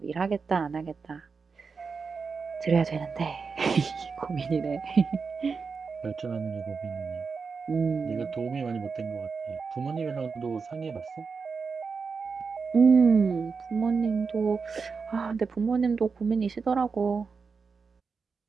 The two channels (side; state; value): left; quieter; 5.1 dB